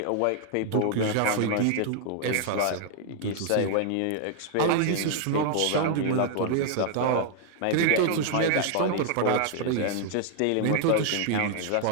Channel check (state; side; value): different; both; correlation 0.00